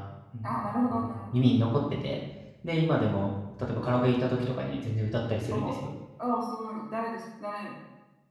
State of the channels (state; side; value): identical; both; correlation 1.00